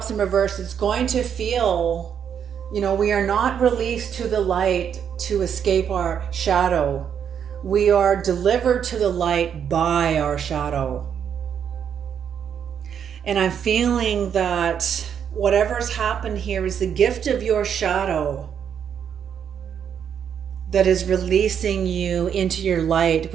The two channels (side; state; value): left; quieter; 8.1 dB